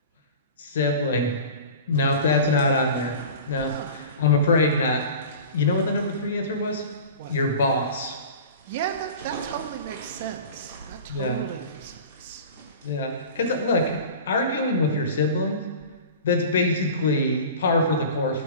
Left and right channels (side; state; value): both; inverted; correlation -0.37